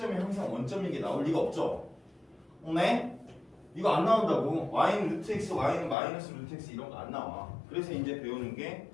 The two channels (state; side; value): drops out; right; at 6.0 s